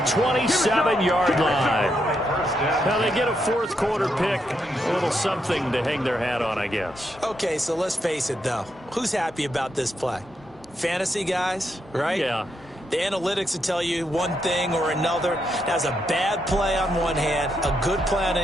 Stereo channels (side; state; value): both; normal; correlation 0.80